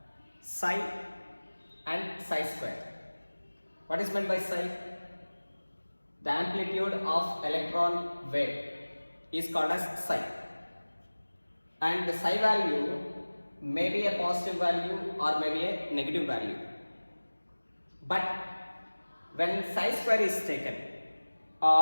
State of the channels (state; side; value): inverted; both; correlation -1.00